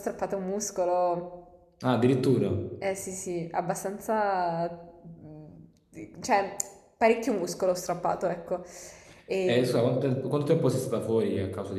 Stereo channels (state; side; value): identical; both; correlation 1.00